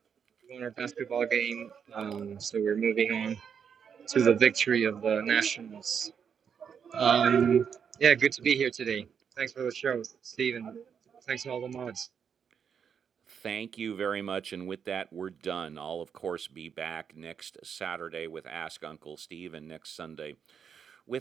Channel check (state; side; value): quieter; left; 7.3 dB